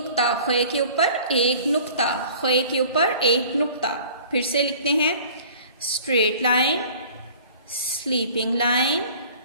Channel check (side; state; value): both; inverted; correlation -0.47